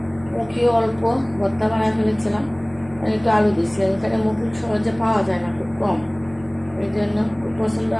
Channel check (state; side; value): noise; left; hum, 24 dB below the sound